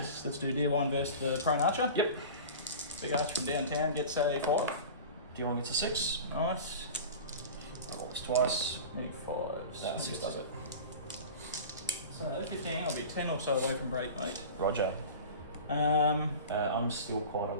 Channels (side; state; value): both; inverted; correlation -0.34